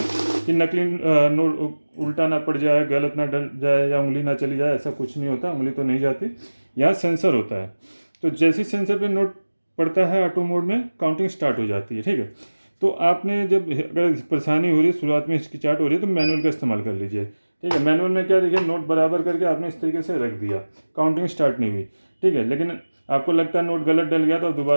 कि नकली नोट उल्टा ना पड़ जाए, गलत ना डल जाए या उंगली ना चली जाए। ऐसा कुछ नहीं होता, उंगली तो नहीं जाती। यहाँ सेंसर होता है, तो जैसे सेंसर पे नोट पड़ता है ऑटो मोड में काउंटिंग स्टार्ट हो जाती है। ठीक है, तो आपने जब अगर परेशानी हो रही है, शुरुआत में हिचकिचाहट हो रही है, तो मैनुअल का इस्तेमाल कर लीजिए। ठीक है, मैनुअल में क्या, देखिए नोट बराबर करके आपने इस तरीके से रख दिया, काउंटिंग स्टार्ट नहीं हुई। ठीक है, लेकिन आपको लगता है नोट गलत डल गया तो आप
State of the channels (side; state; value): both; inverted; correlation -1.00